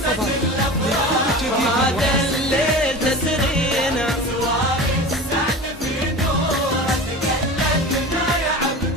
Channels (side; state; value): both; normal; correlation 0.33